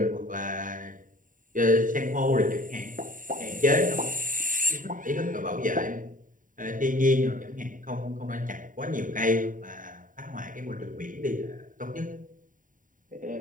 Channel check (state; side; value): late; left; 0.39 ms